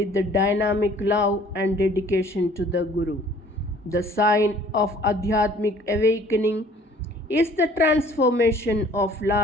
the dynamic love and dedication to the Guru. The sign of Adhyatmic awakening is the transformation of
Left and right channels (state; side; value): normal; both; correlation 0.54